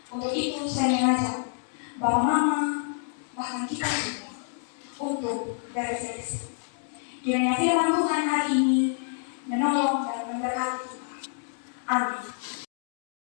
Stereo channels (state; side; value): silent; right; digital silence